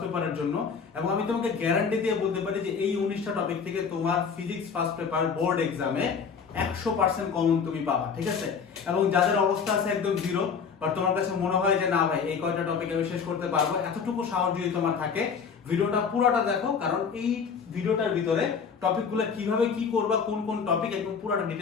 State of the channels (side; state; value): right; quieter; 6.1 dB